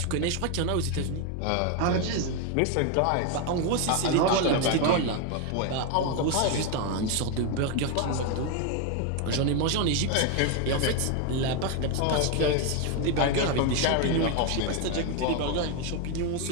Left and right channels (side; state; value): both; different; correlation 0.01